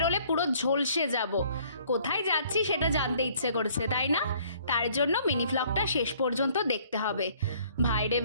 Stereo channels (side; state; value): both; inverted; correlation -0.59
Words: পুরো ঝলসে যাব। কোথায় যাচ্ছি সেটা জানতে ইচ্ছে করছে, তাই না? তার জন্য মিনি ভ্লগটা শেষ পর্যন্ত দেখতে হবে। ভাই রে